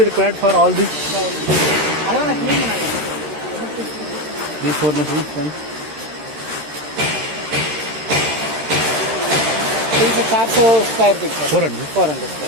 required for all these அதெல்லாம் நான் க்ளீன் பண்ணல. 4 machines then? 400 स्क्वायर फीट पर 400. 400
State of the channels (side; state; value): left; late; 13 ms